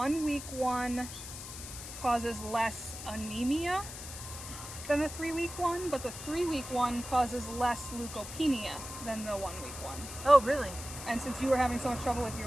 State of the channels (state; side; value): noise; left; hiss, 10 dB below the sound